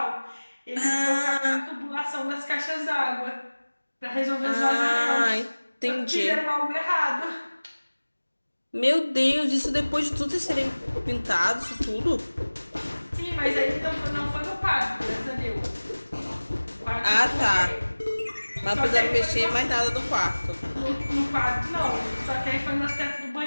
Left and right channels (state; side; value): inverted; both; correlation -1.00